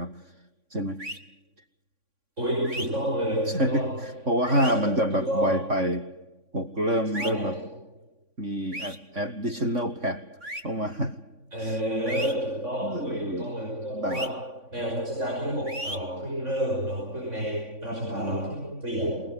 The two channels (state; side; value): late; left; 3.6 ms